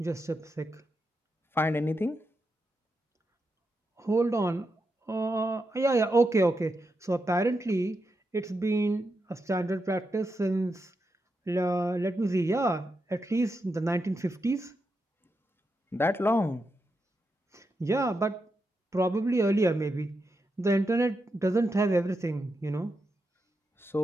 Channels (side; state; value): both; normal; correlation 0.86